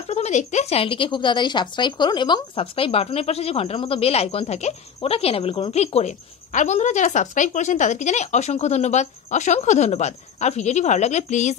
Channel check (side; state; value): right; quieter; 7.4 dB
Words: প্রথমে দেখতে চ্যানেলটিকে খুব তাড়াতাড়ি সাবস্ক্রাইব করুন এবং সাবস্ক্রাইব বাটনের পাশে যে ঘন্টার মতো বেল আইকন থাকে ওটাকে এনেবল করুন ক্লিক করে। আর বন্ধুরা, যারা সাবস্ক্রাইব করেছেন তাদেরকে জানাই অসংখ্য ধন্যবাদ, অসংখ্য ধন্যবাদ। আর ভিডিওটি ভালো লাগলে প্লিজ